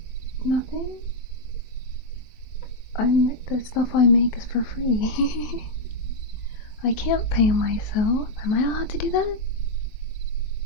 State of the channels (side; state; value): right; late; 23 ms